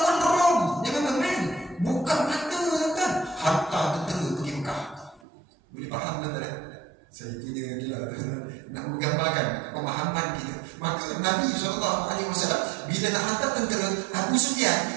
Rom. Dia memang main. Bukan mata tuan. Hantar tentera pergi Mekah. Boleh faham tuan? Saya punya ni lah nak menggambarkan pemahaman kita. Maka Nabi SAW bila nak hantar tentera Abu Sufyan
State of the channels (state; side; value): drops out; left; at 5.2 s